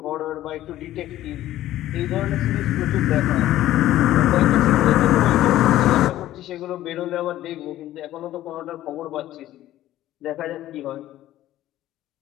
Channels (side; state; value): right; quieter; 14.0 dB